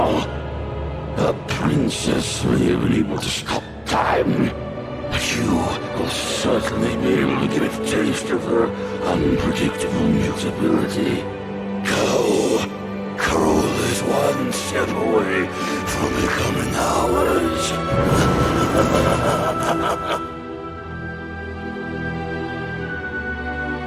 The princess may have been able to stop time, but you will certainly be able to give it a taste of her unpredictable mutability. Carole is one step away from becoming ours.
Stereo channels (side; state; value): both; identical; correlation 1.00